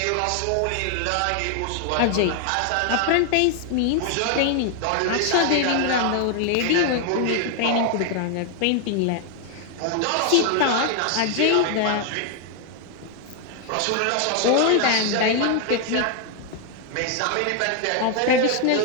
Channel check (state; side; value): different; both; correlation 0.00